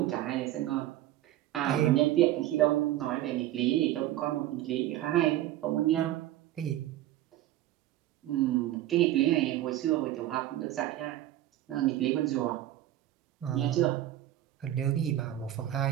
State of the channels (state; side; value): quieter; left; 13.9 dB